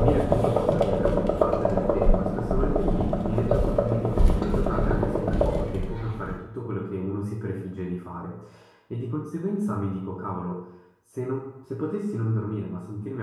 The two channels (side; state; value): both; identical; correlation 1.00